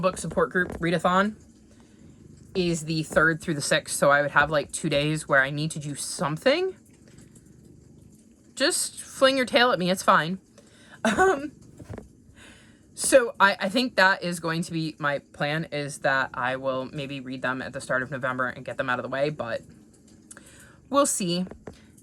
support group readathon is the 3rd through the 6th, so I would have like 2 days where I need to do something. Just fling your tail at me, it's fine. So I think that is going to be my plan, is that I will maybe read them at the start of November and get them out of the way, but we'll see.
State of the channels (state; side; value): identical; both; correlation 1.00